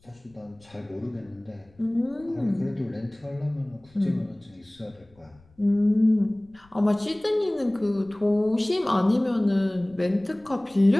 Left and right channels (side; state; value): left; noise; rumble, 29 dB below the sound